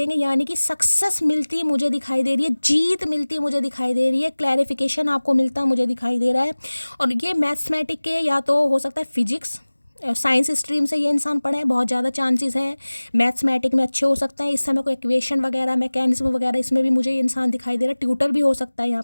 यानी कि सक्सेस मिलती मुझे दिखाई दे रही है, जीत मिलती मुझे दिखाई दे रही है, क्लैरिफिकेशन आपको मिलता मुझे दिखाई दे रहा है। और ये मैथमेटिक के या तो हो सकता है फिजिक्स साइंस स्ट्रीम से ये इंसान पढ़े, बहुत ज़्यादा चांसेस हैं। मैथमेटिक में अच्छे हो सकते हैं। इस समय कोई इक्वेशन वगैरह, मैकेनिज्म वगैरह, इसमें भी मुझे ये इंसान दिखाई दे रहा है। ट्यूटर भी हो सकता है यहाँ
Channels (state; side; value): inverted; both; correlation -1.00